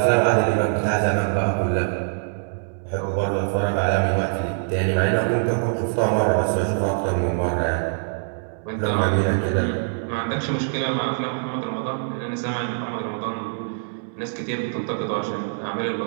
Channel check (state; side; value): silent; left; digital silence